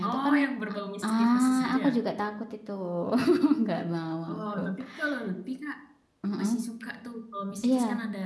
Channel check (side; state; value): both; identical; correlation 1.00